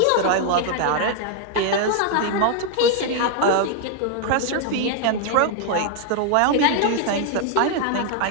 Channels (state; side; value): different; both; correlation 0.00